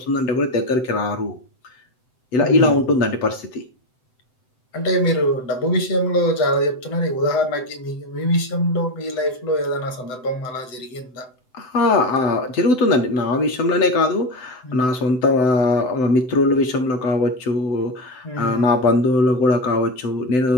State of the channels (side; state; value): right; late; 7.9 ms